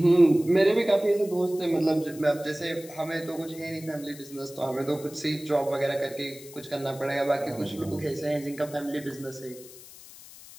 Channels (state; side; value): noise; left; hiss, 18 dB below the sound